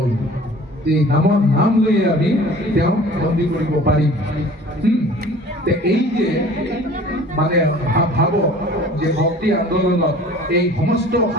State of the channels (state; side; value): normal; both; correlation 0.46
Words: যে নামৰ নাম লৈ আমি তেওঁ বন্দী কৰিব পাৰিম এই যে মানে ভাব যে ভক্তি আন্দোলনত এই সমস্ত